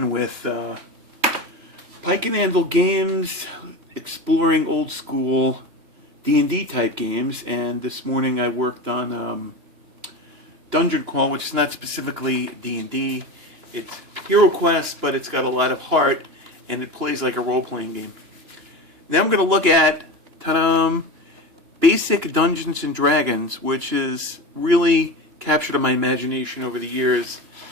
with Pike and Handle games, exploring old school D&D type games, and this morning I worked on Dungeon Crawl, which is not specifically D&D. It's Hero Quest, but it's got a lot of heart, and it plays like a role-playing game. Now I'm going to look at, ta-da, Basic Dungeons and Dragons, which has really captured my imagination over the years.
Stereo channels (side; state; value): left; late; 2.9 ms